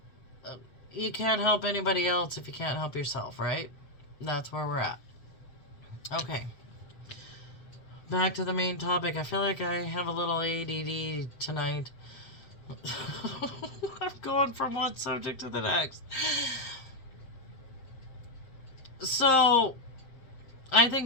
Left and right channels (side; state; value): right; late; 7.6 ms